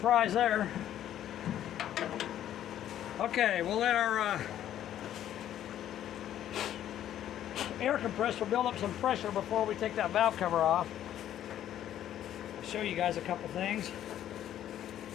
there. Okay, we'll let our air compressor build up some pressure before we take that valve cover off. I'll show you guys a couple things.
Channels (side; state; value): right; quieter; 11.4 dB